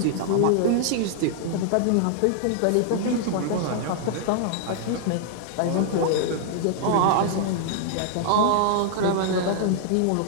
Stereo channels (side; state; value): both; different; correlation -0.01